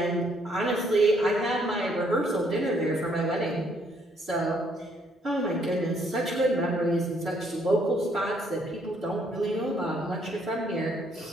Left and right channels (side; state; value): both; normal; correlation 0.68